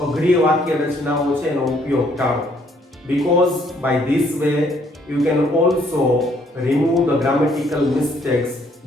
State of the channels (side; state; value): both; normal; correlation 0.66